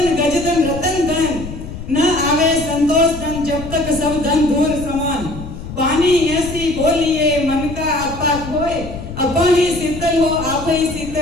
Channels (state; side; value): noise; left; rumble, 10 dB below the sound